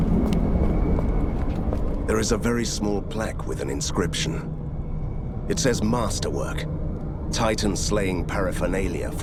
There is a very small plaque with an inscription. It says Masterwork. Titan slaying paraphernalia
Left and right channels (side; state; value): both; identical; correlation 1.00